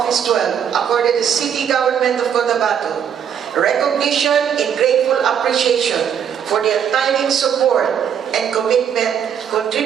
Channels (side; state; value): left; quieter; 8.4 dB